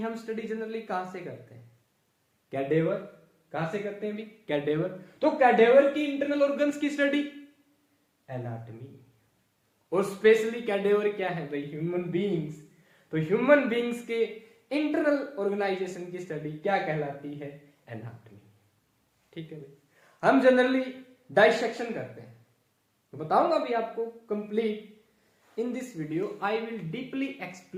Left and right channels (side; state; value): both; identical; correlation 1.00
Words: हम स्टडी जनरली कहां से करते हैं? कैडेवर। कहां से करते हैं भी? कैडेवर। तो कैडेवर की इंटरनल ऑर्गन्स की स्टडी एनाटॉमी। और स्पेशली कैडेवर क्या है भाई? Human beings. तो ह्यूमन बीइंग्स के इंटरनल ऑर्गेनाइजेशन की स्टडी क्या कहलाती है? एनाटॉमी। ठीक है भाई। हम जनरली डाइसेक्शन करते हैं, तो बताऊंगा भी आपको complete in this video. I will deeply